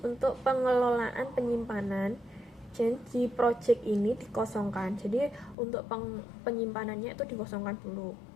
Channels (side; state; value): right; drops out; at 5.6 s